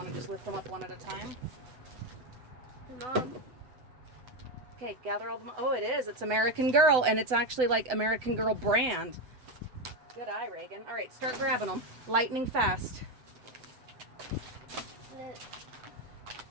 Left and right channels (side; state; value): left; late; 7.9 ms